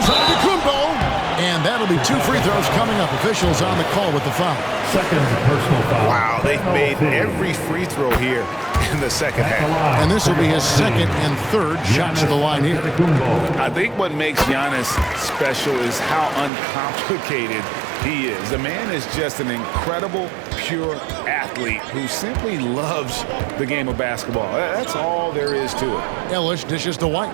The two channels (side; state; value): left; drops out; at 16.5 s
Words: Antetokounmpo. And that'll be 2 free throws coming up. Officials on the call with the foul. Second personal foul. Wow, they've made every free throw here in the second half. And this will be his 2nd and 3rd shots to the line here. I think what makes Giannis special is how uncomplicated he is. The man is just an incredible, pure athlete who simply loves the game of basketball. That's all there is to it. Ellis dishes to